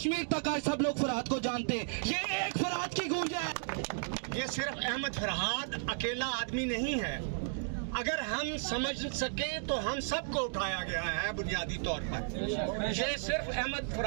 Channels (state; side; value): silent; left; digital silence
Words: तक आज सब लोग फरहाद को जानते हैं। ये एक फरहाद की गूंज है। ये सिर्फ अहमद फरहाद अकेला आदमी नहीं है, अगर हम समझ सके तो हम सबको उठाया गया है बुनियादी तौर पर। ये सिर्फ अहमद